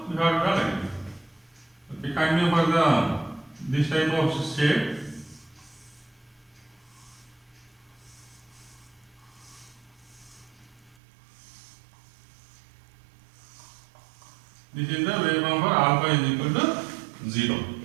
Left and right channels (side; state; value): left; drops out; at 11.0 s